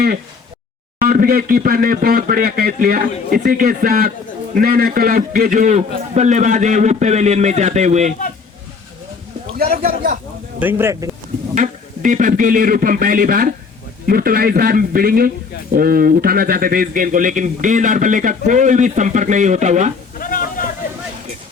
और विकेट कीपर ने बहुत बढ़िया कैच लिया। इसी के साथ नैना क्लब के जो बल्लेबाज है वो पेवेलियन में जाते हुए दीपक के लिए रूपम पहली बार मुर्तला इस बार भिड़ेंगे उठाना चाहते थे इस गेंद को लेकिन गेंद और बल्ले का कोई भी संपर्क नहीं होता हुआ।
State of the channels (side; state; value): right; quieter; 5.0 dB